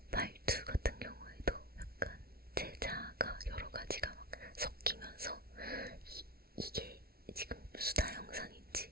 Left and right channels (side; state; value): left; late; 0.44 ms